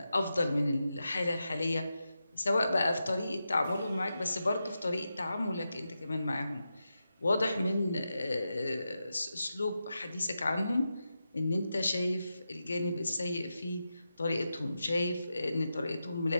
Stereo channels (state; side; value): inverted; both; correlation -0.89